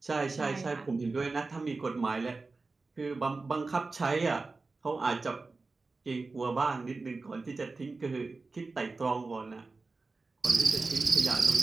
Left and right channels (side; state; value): left; quieter; 3.8 dB